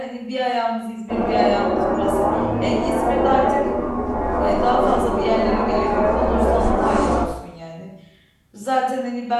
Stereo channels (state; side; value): identical; both; correlation 1.00